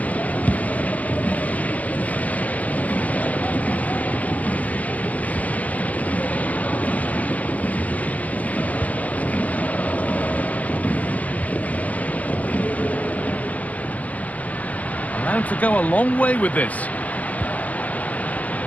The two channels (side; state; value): right; late; 0.073 ms